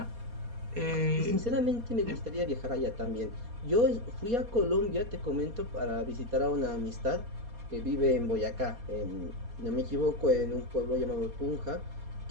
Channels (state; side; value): late; left; 4.2 ms